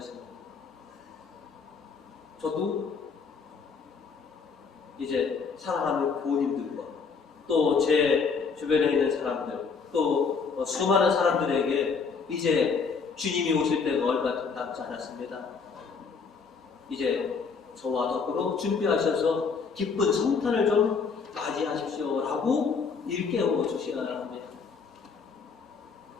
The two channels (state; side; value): quieter; right; 5.3 dB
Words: 저도 이제 사랑하는 부모님들과 또 제 주변에 있는 사람들 또 수많은 사람들에게 이제 주님이 오실 때가 얼마 남지 않았습니다. 이제 저와 더불어 준비하셔서 기쁜 성탄을 좀 맞이하십시오 라고 일깨워 주셔야 합니다.